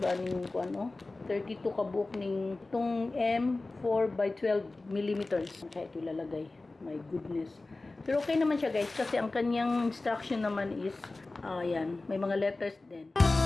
yung kuan, 32 kabuok ng itong M4 by 12 millimeters. Kaya ito ilalagay. My goodness. Pero okay naman siya guys kasi ang kanyang instruction naman is yan, may mga letters din.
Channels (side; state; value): right; quieter; 3.2 dB